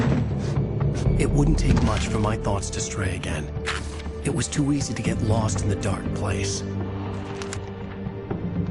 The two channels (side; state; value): both; identical; correlation 1.00